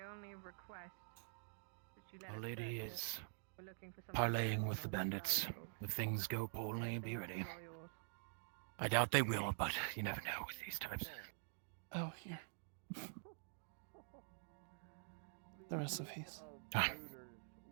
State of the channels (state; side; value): silent; left; digital silence